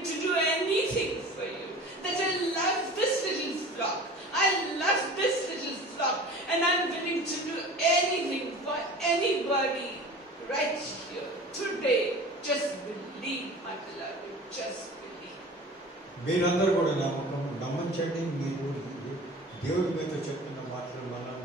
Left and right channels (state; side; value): normal; both; correlation 0.40